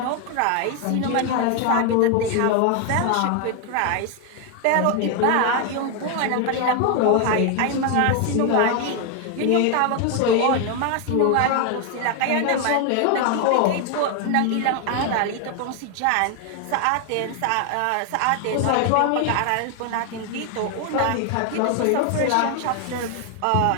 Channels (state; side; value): different; both; correlation 0.01